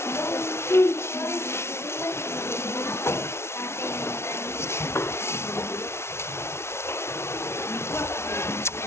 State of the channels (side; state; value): right; late; 0.12 ms